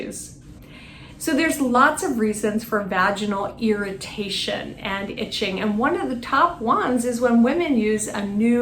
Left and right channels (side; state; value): both; identical; correlation 1.00